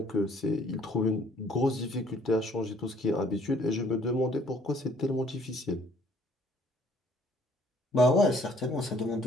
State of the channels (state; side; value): normal; both; correlation 0.60